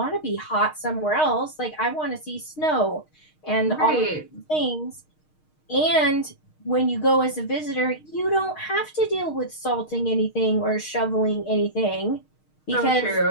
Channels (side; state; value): right; late; 6.5 ms